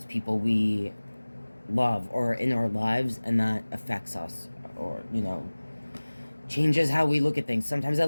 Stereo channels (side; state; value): both; inverted; correlation -1.00